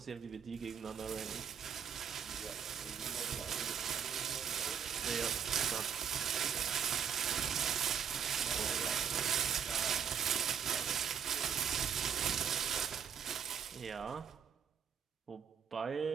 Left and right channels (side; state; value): left; quieter; 7.8 dB